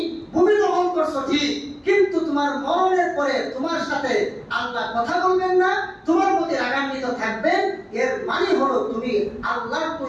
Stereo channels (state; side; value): identical; both; correlation 1.00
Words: ভূমি দখল করছো ঠিক, কিন্তু তোমার মরণের পরে তোমার সাথে আল্লাহ কথা বলবেন না, তোমার প্রতি রাগান্বিত থাকবেন। এর মানে হলো তুমি আল্লাহর